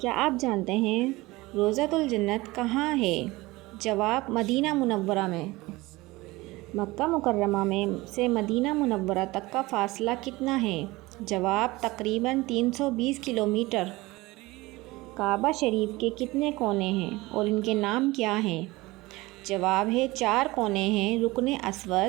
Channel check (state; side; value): quieter; left; 20.8 dB